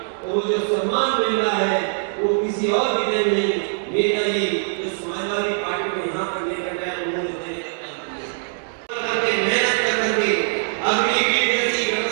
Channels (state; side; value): silent; left; digital silence